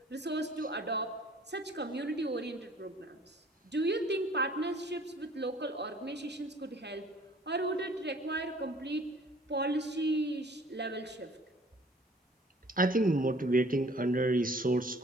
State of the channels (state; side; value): normal; both; correlation 0.54